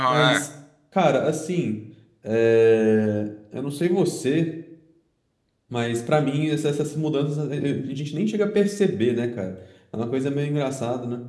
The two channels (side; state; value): both; identical; correlation 1.00